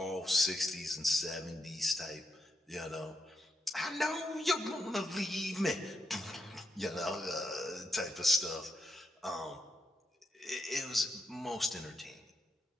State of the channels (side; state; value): both; normal; correlation 0.81